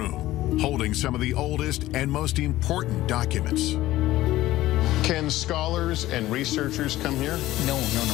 holding some of the oldest and most important documents. Can scholars and researchers come here? No.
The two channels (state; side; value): quieter; right; 15.9 dB